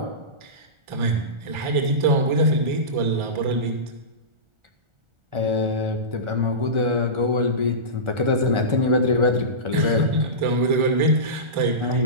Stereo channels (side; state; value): left; late; 1.4 ms